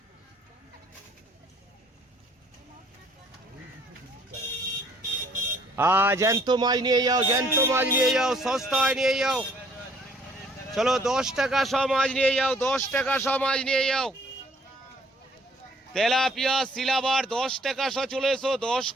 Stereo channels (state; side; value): normal; both; correlation 0.61